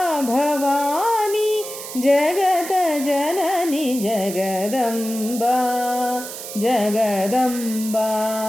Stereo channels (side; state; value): right; noise; hiss, 10 dB below the sound